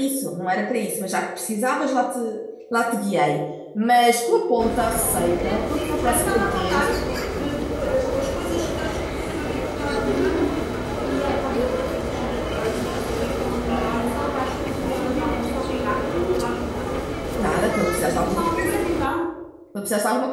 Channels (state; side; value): identical; both; correlation 1.00